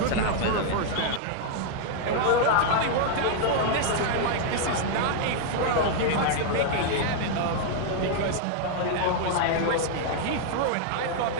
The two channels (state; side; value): different; both; correlation 0.00